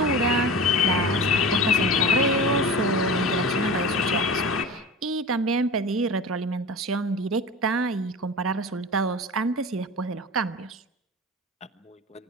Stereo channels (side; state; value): both; normal; correlation 0.32